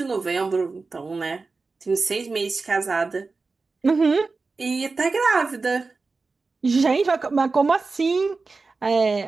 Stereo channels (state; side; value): quieter; left; 4.0 dB